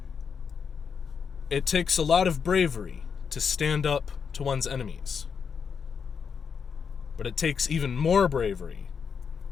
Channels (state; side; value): quieter; right; 6.4 dB